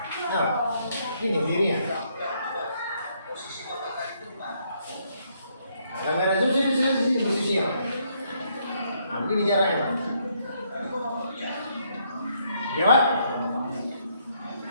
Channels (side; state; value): both; inverted; correlation -0.72